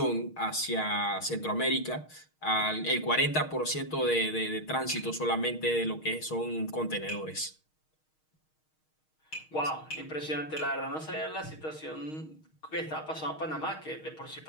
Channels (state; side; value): late; right; 6.4 ms